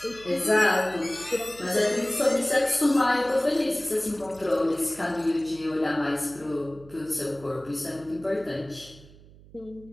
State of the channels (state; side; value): noise; right; hum, 22 dB below the sound